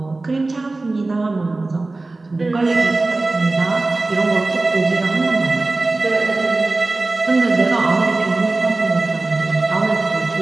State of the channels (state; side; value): quieter; left; 3.2 dB